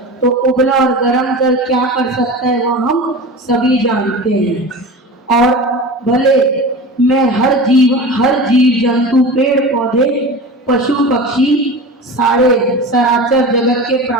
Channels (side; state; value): both; normal; correlation 0.31